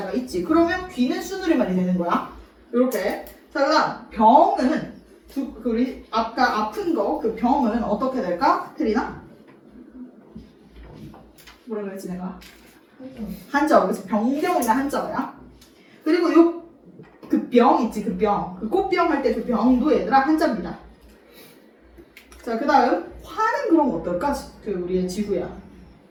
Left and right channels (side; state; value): both; identical; correlation 1.00